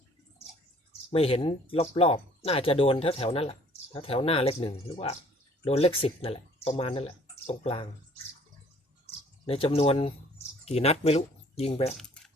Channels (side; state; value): both; normal; correlation 0.56